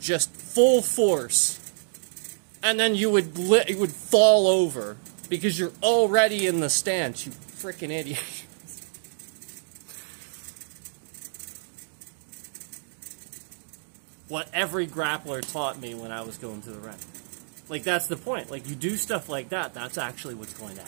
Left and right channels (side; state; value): left; silent; digital silence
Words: full force. And then you would fall over because you're already in the stance, you freaking idiot. What every grappler taught me when I was going to the ring. Like, that's the point. Like, you do stuff like that, that's actually what's going to